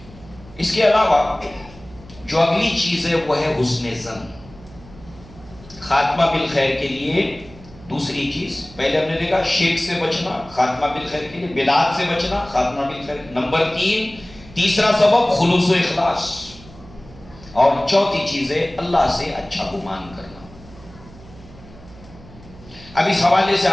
اس کے علاوہ جو اگلی چیز ہے وہ ہے حسن ظن۔ خاتمہ بالخیر کے لیے دوسری چیز، پہلے ہم نے دیکھا شرک سے بچنا، خاتمہ بالخیر کے لیے بدعات سے بچنا، خاتمہ بالخیر۔ نمبر 3، تیسرا سبب خلوص و اخلاص، اور چوتھی چیز ہے اللہ سے اچھا گمان کرنا۔ اب اس حوالے سے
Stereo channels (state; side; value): noise; right; hum, 20 dB below the sound